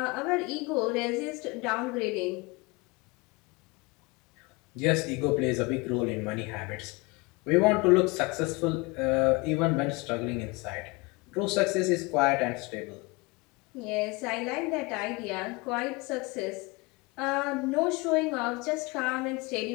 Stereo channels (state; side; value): quieter; right; 25.6 dB